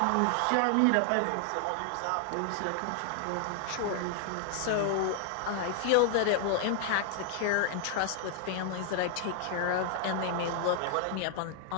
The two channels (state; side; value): different; both; correlation 0.00